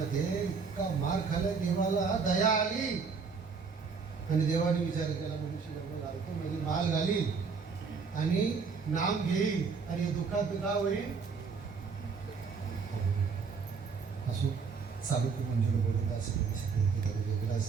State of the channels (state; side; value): quieter; left; 5.2 dB